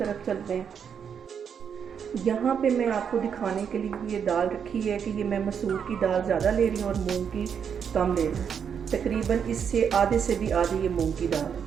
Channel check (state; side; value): quieter; left; 7.4 dB